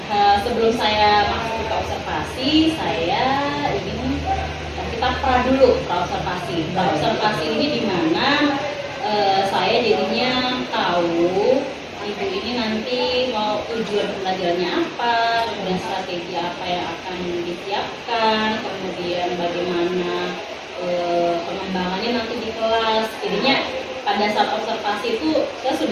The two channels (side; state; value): both; identical; correlation 1.00